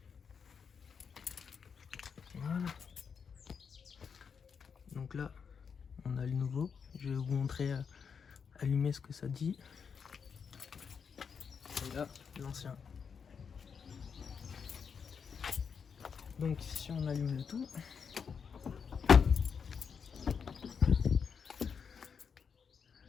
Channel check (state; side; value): quieter; right; 6.4 dB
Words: Voilà. Donc là, on a le nouveau. Je vais vous montrer allumer ce que ça dit. Et là, l'ancien. Donc si on allume le tout,